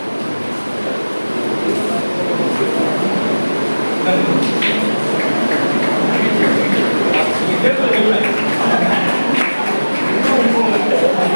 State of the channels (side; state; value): both; inverted; correlation -1.00